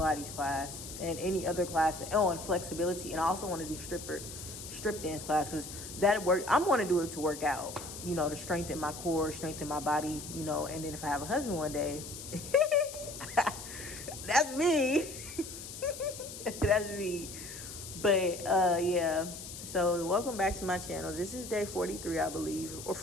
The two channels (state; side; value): noise; left; hiss, 11 dB below the sound